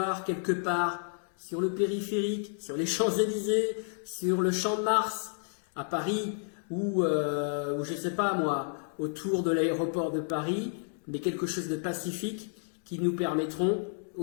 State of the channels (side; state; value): right; silent; digital silence